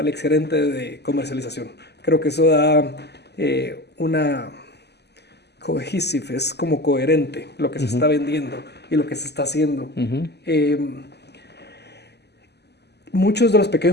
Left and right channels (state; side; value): late; right; 0.49 ms